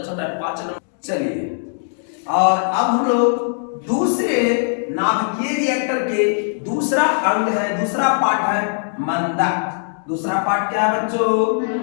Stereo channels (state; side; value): silent; right; digital silence